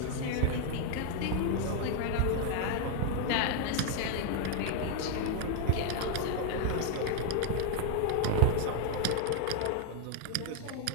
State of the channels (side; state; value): both; different; correlation 0.00